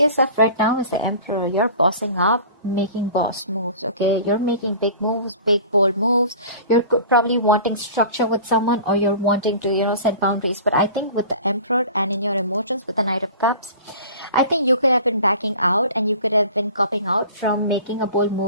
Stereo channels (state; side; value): inverted; both; correlation -0.41